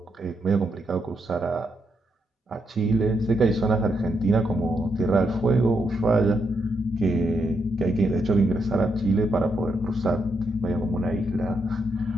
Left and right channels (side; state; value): both; normal; correlation 0.80